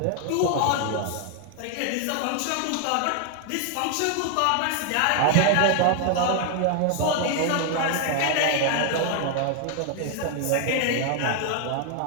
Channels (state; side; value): different; both; correlation 0.00